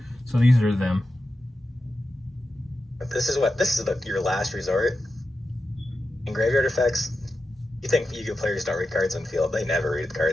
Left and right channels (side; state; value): both; normal; correlation 0.90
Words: So these are them. This is your last resort. In graveyard effects, you think Yu-Gi-Oh players don't read cards on field? They never read the